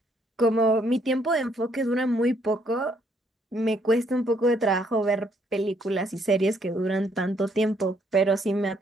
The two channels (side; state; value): both; normal; correlation 0.69